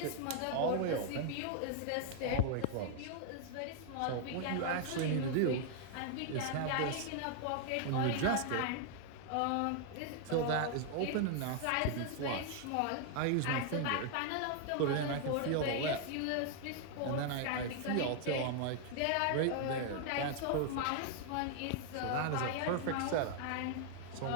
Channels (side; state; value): both; different; correlation 0.00